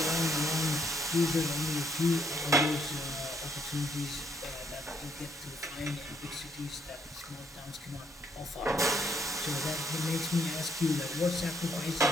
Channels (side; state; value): both; normal; correlation 0.71